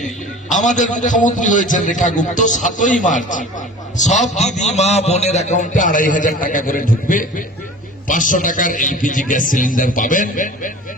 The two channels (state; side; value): normal; both; correlation 0.40